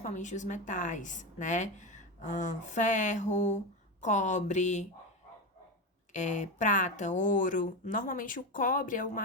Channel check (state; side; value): normal; both; correlation 0.17